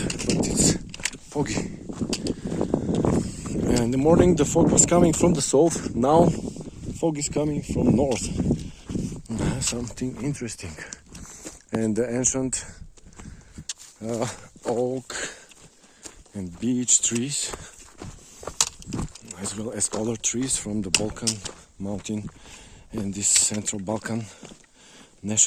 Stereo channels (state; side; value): identical; both; correlation 1.00